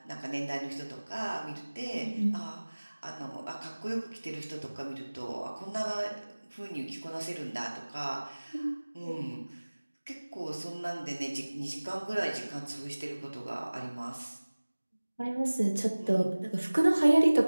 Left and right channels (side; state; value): both; inverted; correlation -1.00